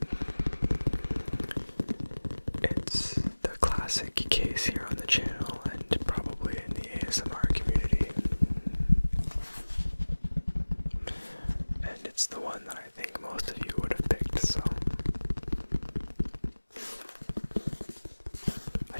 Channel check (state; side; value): inverted; both; correlation -1.00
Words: It's the classic case here on the channel and probably in the ASMR community. And it's the one that I think most of you would have picked, so I